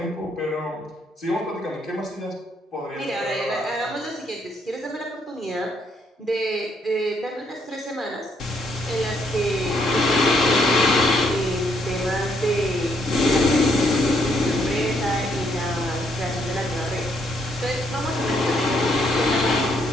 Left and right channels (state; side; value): normal; both; correlation 0.71